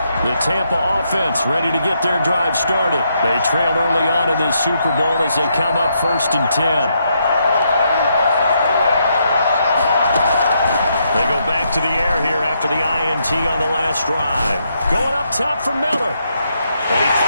The Tampa offense ready to get their drive started. They trailed early on in this Super Bowl as they come up 1st and 10. They go back to the air here after the INT on the last drive. Going up top for Miller. And he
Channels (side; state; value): both; inverted; correlation -0.78